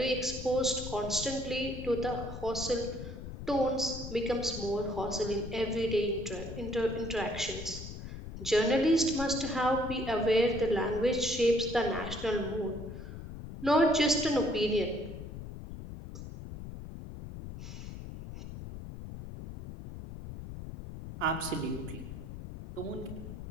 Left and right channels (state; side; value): noise; left; rumble, 10 dB below the sound